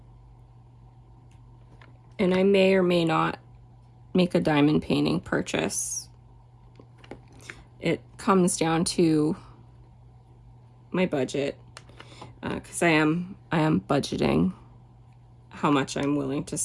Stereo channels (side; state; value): both; identical; correlation 1.00